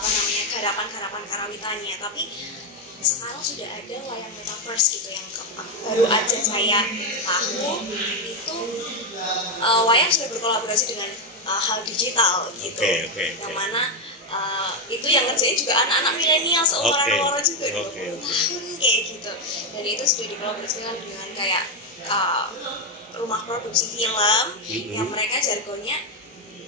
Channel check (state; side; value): normal; both; correlation 0.06